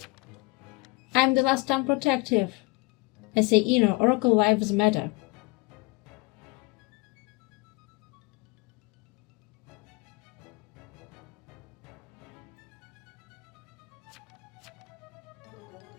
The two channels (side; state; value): right; quieter; 24.9 dB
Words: I'm the last time protective. I say, Oracle lives matter.